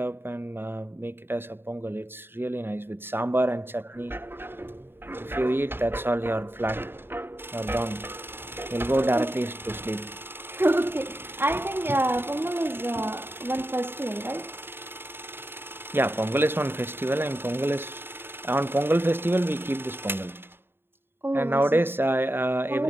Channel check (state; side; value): late; left; 0.11 ms